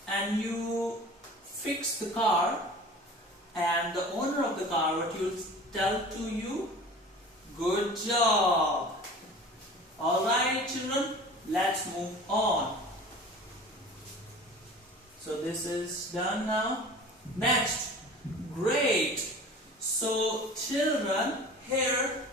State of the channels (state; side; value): normal; both; correlation 0.41